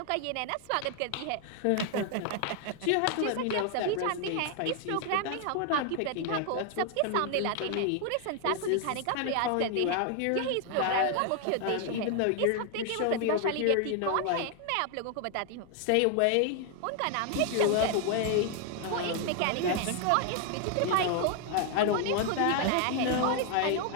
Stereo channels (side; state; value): both; different; correlation 0.00